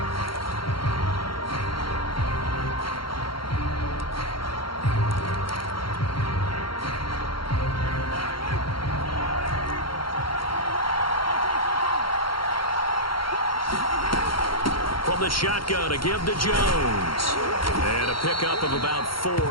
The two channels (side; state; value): right; late; 0.73 ms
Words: The shotgun to give to Jones. And a pickup of about